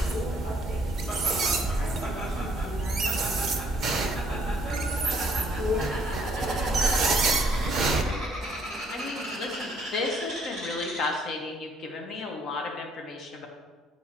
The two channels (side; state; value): both; normal; correlation 0.65